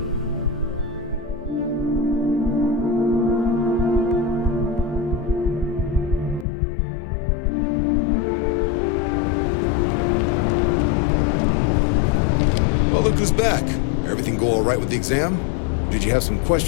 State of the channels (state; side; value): drops out; right; at 6.5 s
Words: Well, look who's back. Everything go all right with the exam? Or did you have some